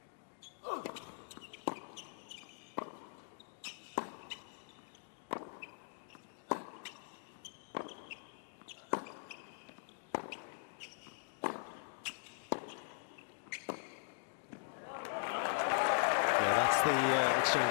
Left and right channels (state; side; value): silent; right; digital silence